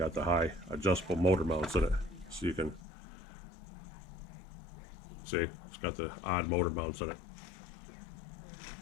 the high adjustable motor mounts in it, so you can see it's got the odd motor mounts in it.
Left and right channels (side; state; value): right; drops out; at 2.9 s